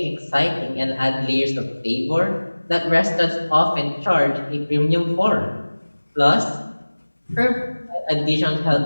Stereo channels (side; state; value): both; inverted; correlation -1.00